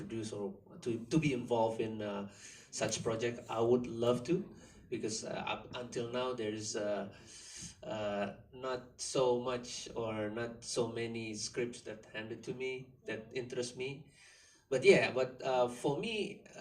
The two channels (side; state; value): both; identical; correlation 1.00